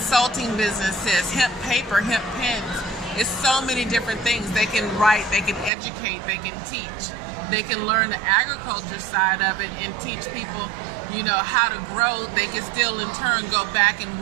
businesses, hemp paper, hemp pens. It's so many different things. They can write, they can educate, they can teach. They can learn the agriculture side of it and teach people, how to grow. They can still in turn go back and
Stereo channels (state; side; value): drops out; left; at 5.7 s